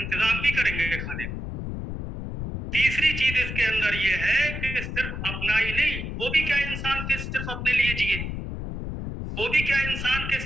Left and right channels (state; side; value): noise; left; rumble, 5 dB below the sound